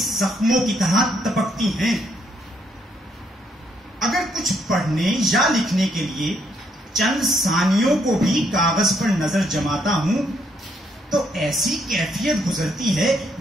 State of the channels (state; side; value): normal; both; correlation 0.73